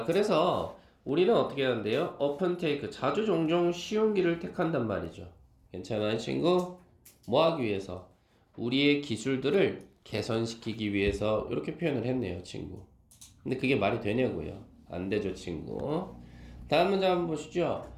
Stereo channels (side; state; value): both; identical; correlation 1.00